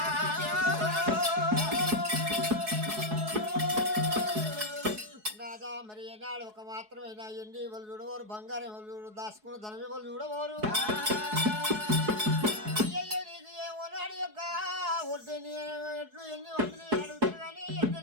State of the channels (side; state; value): left; late; 4.7 ms